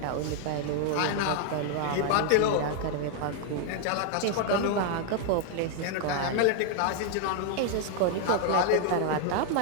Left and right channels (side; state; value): both; different; correlation 0.00